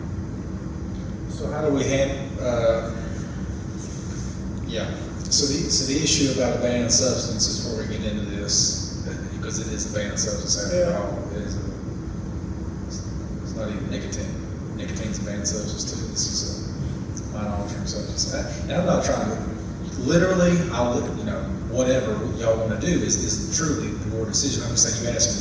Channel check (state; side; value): identical; both; correlation 1.00